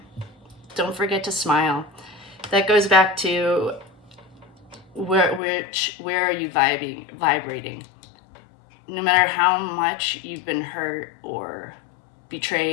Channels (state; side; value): drops out; right; at 5.4 s